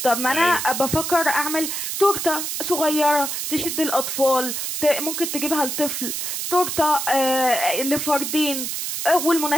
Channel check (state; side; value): noise; right; hiss, 3 dB below the sound